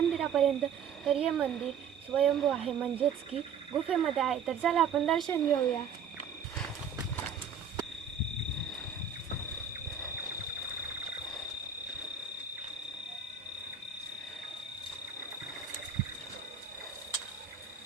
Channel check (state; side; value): quieter; left; 6.7 dB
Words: तर हे मंदिर स्वयंभू आहे म्हणजेच की गुफेमध्ये आहे. तर चला आपण दर्शन घेऊया.